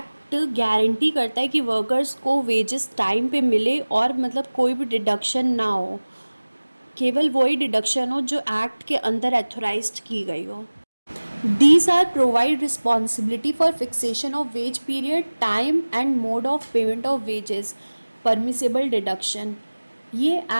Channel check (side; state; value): both; inverted; correlation -1.00